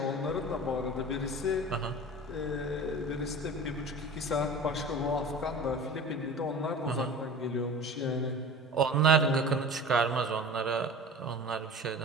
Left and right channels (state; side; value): normal; both; correlation 0.37